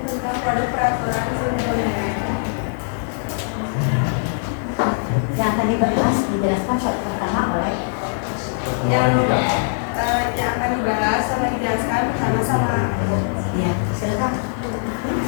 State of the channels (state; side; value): silent; right; digital silence